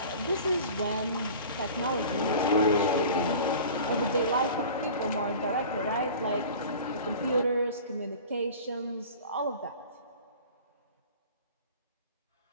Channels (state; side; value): inverted; both; correlation -0.40